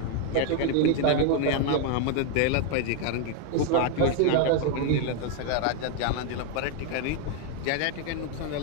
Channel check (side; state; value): both; different; correlation 0.01